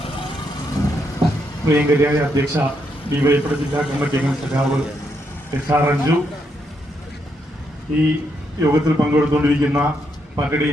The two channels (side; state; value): both; normal; correlation 0.78